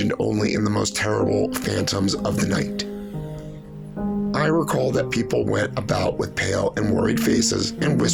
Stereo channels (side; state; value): both; identical; correlation 1.00